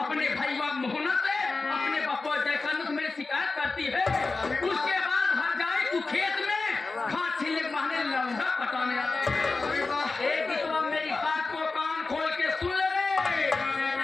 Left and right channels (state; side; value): quieter; right; 3.8 dB